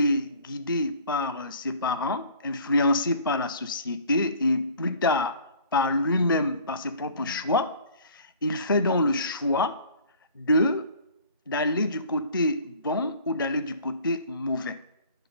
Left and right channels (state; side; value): inverted; both; correlation -0.49